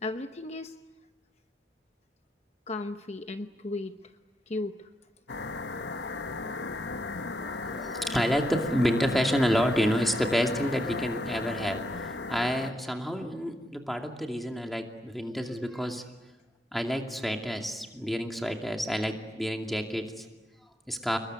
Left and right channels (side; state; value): both; normal; correlation 0.80